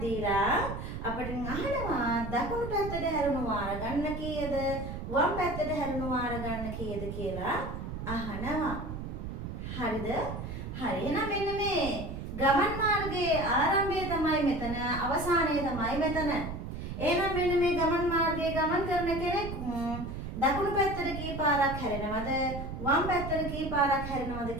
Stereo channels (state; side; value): noise; right; rumble, 7 dB below the sound